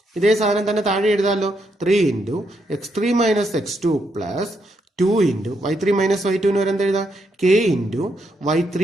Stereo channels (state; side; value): normal; both; correlation 0.78